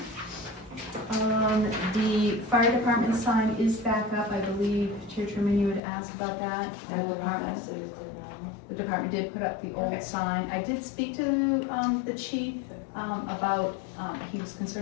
The fire department sign is back up, I believe, Chair Truman, you had asked about that. The department did put up the old Okay. sign. I did speak to the chief about, he was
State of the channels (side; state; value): right; drops out; at 5.8 s